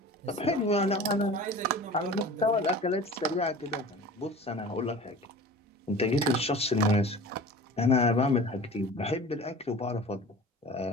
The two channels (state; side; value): normal; both; correlation 0.40